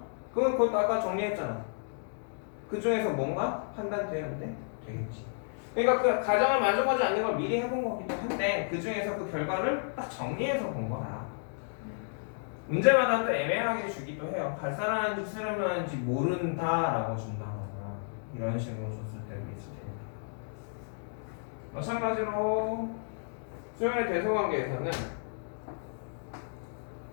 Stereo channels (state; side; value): silent; right; digital silence